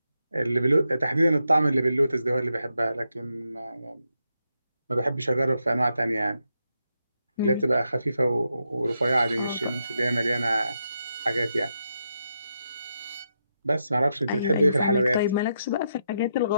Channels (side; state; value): both; inverted; correlation -0.83